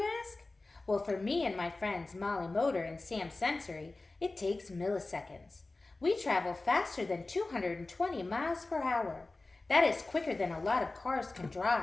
ask? Well, for me and my friends Molly Motor and Sam Sensory, it takes milliseconds. We travel faster than 220 miles per hour. That is quicker than a lot of cars can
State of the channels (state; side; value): quieter; right; 3.2 dB